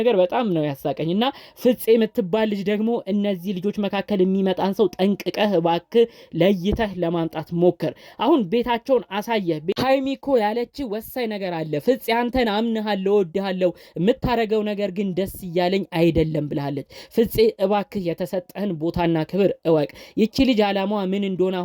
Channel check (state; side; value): identical; both; correlation 1.00